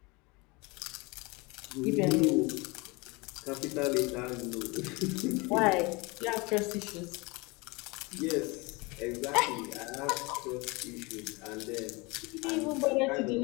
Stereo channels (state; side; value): quieter; right; 26.2 dB